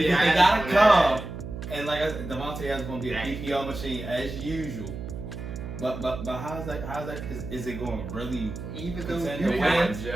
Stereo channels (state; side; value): noise; right; hum, 9 dB below the sound